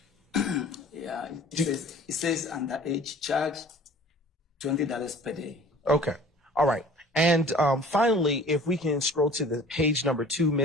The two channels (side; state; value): both; normal; correlation 0.47